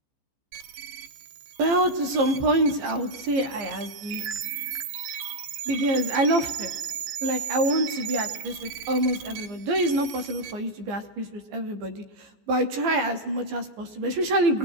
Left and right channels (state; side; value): late; left; 15 ms